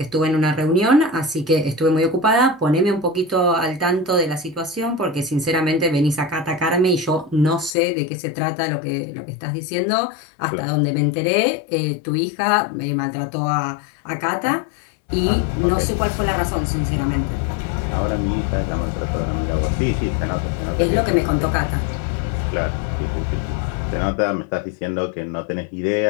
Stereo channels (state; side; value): drops out; right; at 7.8 s